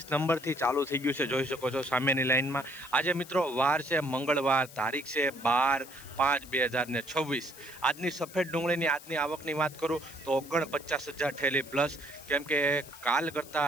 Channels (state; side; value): noise; left; hiss, 18 dB below the sound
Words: નંબરથી ચાલુ થઈ ગયું છે, જોઈ શકો છો સામેની લાઇનમાં. આજે મિત્રો વાર છે મંગળવાર, તારીખ છે 12/5/2026. આજની સફેદ ડુંગળીની આજની આવકની વાત કરું તો 49,000 ઠેલી પ્લસ, કેમ કે કાલ